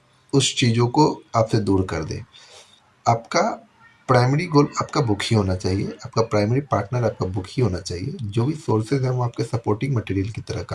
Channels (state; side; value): identical; both; correlation 1.00